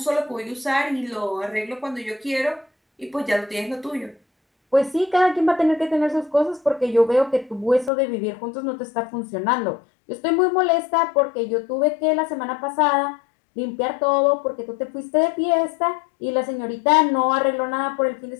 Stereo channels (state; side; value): drops out; right; at 7.9 s